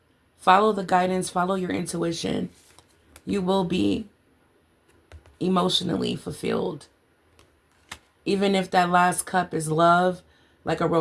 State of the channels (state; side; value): identical; both; correlation 1.00